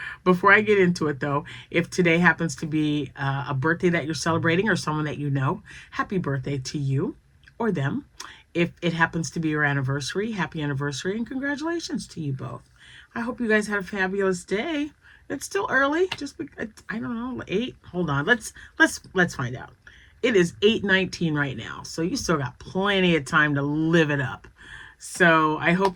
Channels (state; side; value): identical; both; correlation 1.00